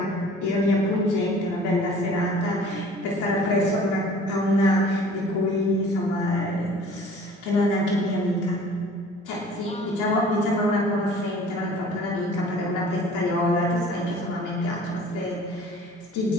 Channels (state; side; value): normal; both; correlation 0.49